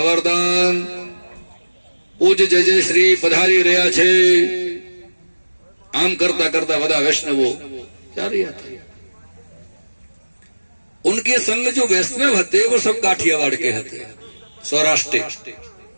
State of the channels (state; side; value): inverted; both; correlation -1.00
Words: पूज जय जय श्री पधारी रहा छे, आम करता करता वदा वैष्णवो जा रहा था। उनके संग जो वैष्णव हते वो सब काठियावाड़ के हते, सौराष्ट्र।